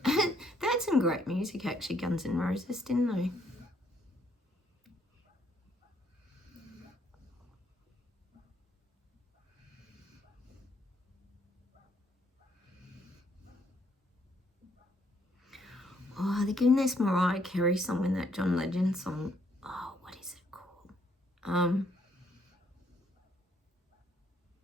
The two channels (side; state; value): both; normal; correlation 0.70